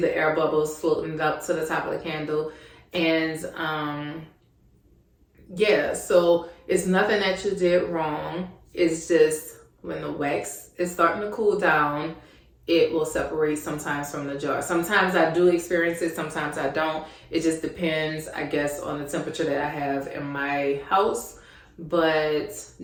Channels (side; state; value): both; identical; correlation 1.00